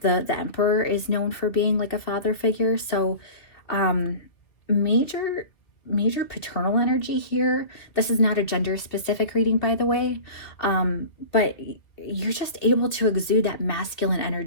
The Emperor is known for being like a father figure. So major paternal energy here. This is not a gender specific reading, by the way, but you're just able to exude that masculine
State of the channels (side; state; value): right; late; 2.0 ms